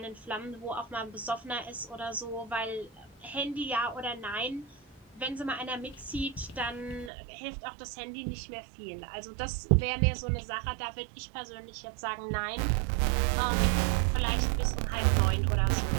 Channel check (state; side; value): drops out; left; at 7.1 s